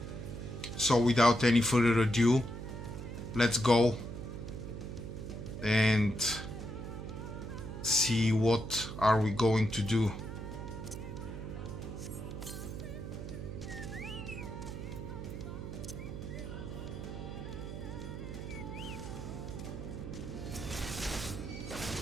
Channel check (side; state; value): right; noise; hum, 8 dB below the sound